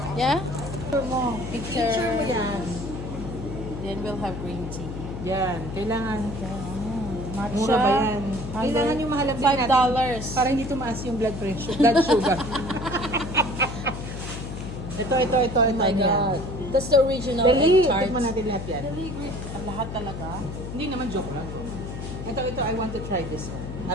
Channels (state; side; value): noise; left; hum, 8 dB below the sound